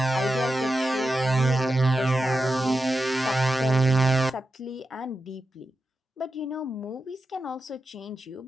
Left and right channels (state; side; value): normal; both; correlation 0.90